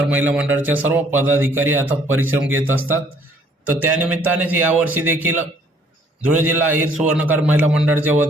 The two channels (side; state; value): both; normal; correlation 0.61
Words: महिला मंडळाच्या सर्व पदाधिकारी अथक परिश्रम घेत असतात। तर त्यानिमित्तानेच यावर्षी देखील धुळे जिल्हा अहिर सुवर्णकार महिला मंडळाच्या